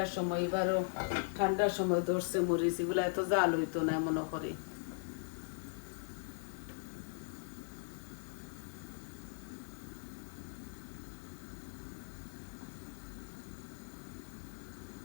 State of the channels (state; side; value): silent; right; digital silence